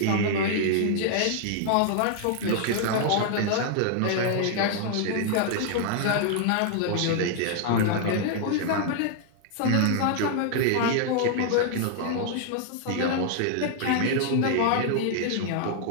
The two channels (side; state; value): both; different; correlation 0.00